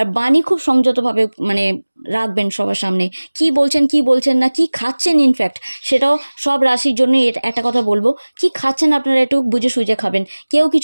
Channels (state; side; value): inverted; both; correlation -1.00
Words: বাণী খুব সংযতভাবে মানে রাখবেন সবার সামনে, কি বলছেন না, কি খাচ্ছেন, ইনফ্যাক্ট সেটাও সব রাশির জন্য একটা কথা বলবো, কি খাচ্ছেন আপনারা একটু বুঝে সুঝে খাবেন। কেউ